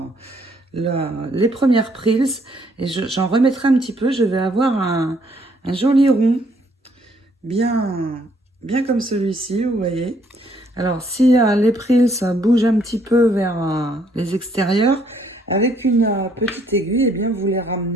les premières prills et j'en remettrai un petit peu. Je vais avoir un joli rond bien comme celui-ci, vous voyez. Alors, si les prills bougent un petit peu vers les extérieurs, avec une petite aiguille, eh bien, vous les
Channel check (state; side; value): normal; both; correlation 0.67